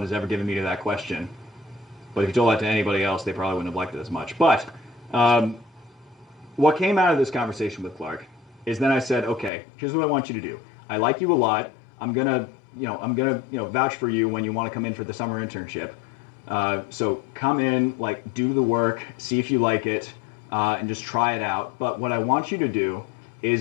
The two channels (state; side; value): drops out; right; at 9.5 s